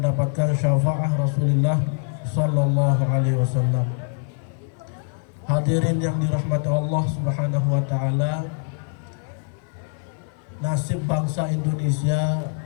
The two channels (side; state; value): right; silent; 63 dB below the other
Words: syafaat Rasulullah sallallahu alaihi wasallam. Hadirin yang dirahmati Allah Subhanahu wa Ta'ala, nasib bangsa Indonesia